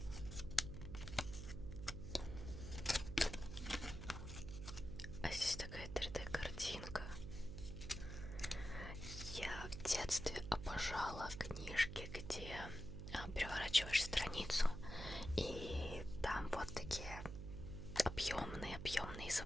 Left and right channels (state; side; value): noise; right; hum, 7 dB below the sound